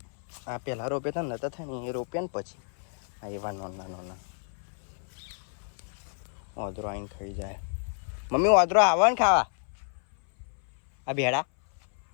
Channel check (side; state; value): right; silent; 58 dB below the other